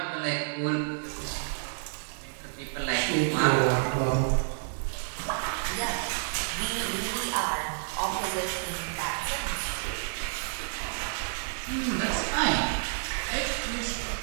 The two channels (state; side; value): silent; left; 58 dB below the other